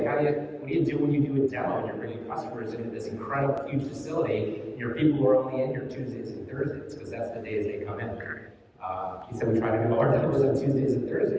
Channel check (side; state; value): both; identical; correlation 1.00